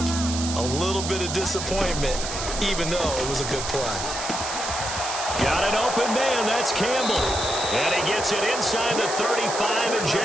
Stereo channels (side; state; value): right; noise; hiss, 5 dB below the sound